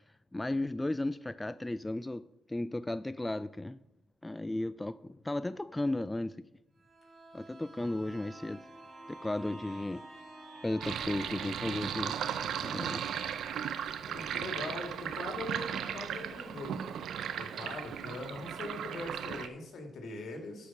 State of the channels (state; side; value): normal; both; correlation 0.83